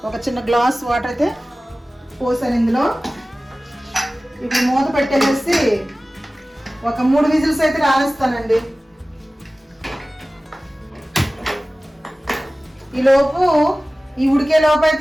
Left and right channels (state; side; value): normal; both; correlation 0.97